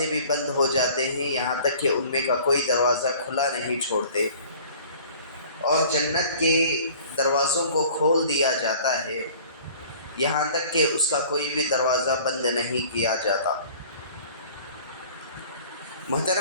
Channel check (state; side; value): inverted; both; correlation -0.48